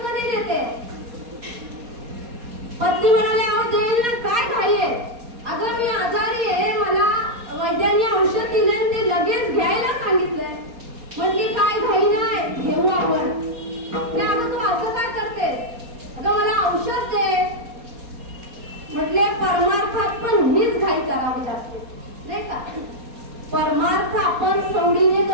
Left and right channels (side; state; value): left; late; 4.2 ms